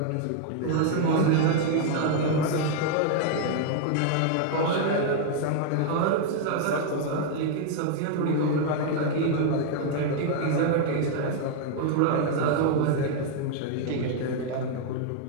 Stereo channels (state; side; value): different; both; correlation 0.00